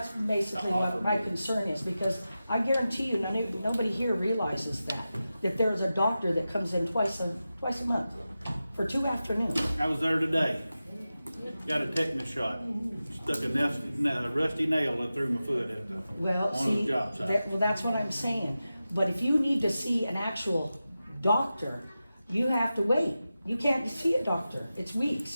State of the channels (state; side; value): inverted; both; correlation -0.93